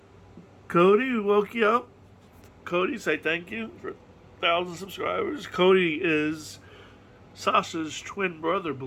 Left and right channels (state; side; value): identical; both; correlation 1.00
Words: Cody, we woke you up. Cody, say thank you for 1,000 subscribers. Cody is Sasha's twin brother,